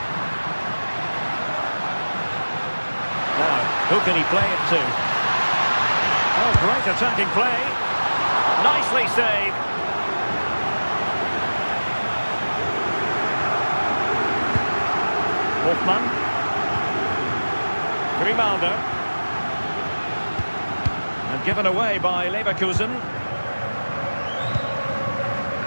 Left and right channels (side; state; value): both; inverted; correlation -1.00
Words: Now, who can he play it to? Oh, great attacking play. Nicely saved. Hoffman. Grimaldo. And given away by Leverkusen.